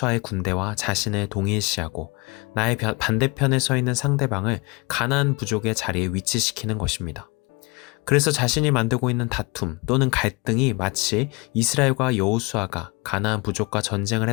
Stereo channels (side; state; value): right; quieter; 27.8 dB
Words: 군대와 자신을 동일시하고 나의 반대편에 서 있는 상대방을 가나안 부족의 자리에 위치시키는 것입니다. 그래서 자신이 만들고 있는 다툼 또는 갈등이 마치 이스라엘과 여호수아가 가나안 부족과 전쟁을